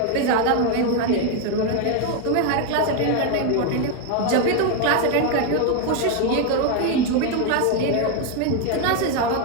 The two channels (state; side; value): different; both; correlation 0.01